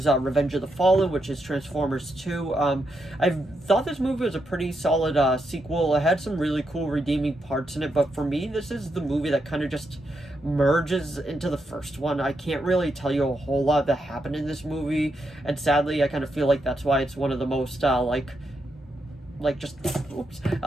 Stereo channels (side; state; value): both; normal; correlation 0.82